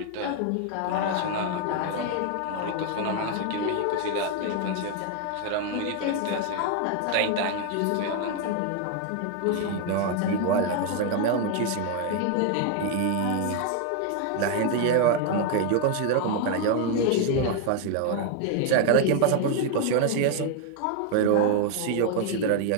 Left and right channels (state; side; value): different; both; correlation 0.00